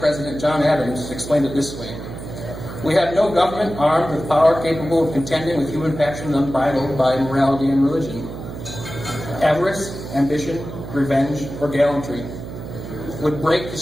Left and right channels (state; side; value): noise; right; hum, 10 dB below the sound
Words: John Adams, explained it this way. We have no government armed with power capable of contending with human passions unbridled by morality and religion. Avarice, ambition, revenge, or gallantry would break the